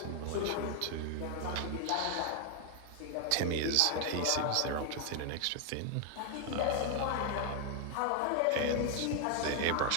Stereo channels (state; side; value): different; both; correlation 0.00